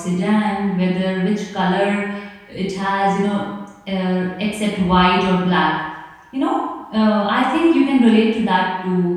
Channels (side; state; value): both; identical; correlation 1.00